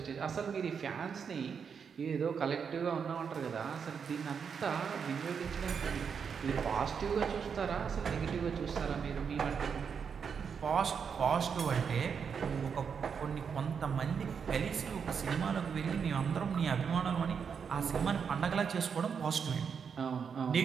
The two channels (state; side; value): quieter; left; 6.6 dB